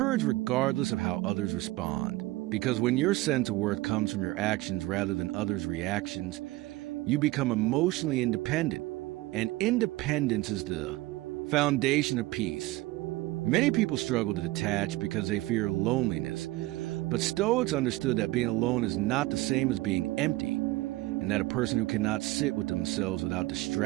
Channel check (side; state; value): left; quieter; 19.3 dB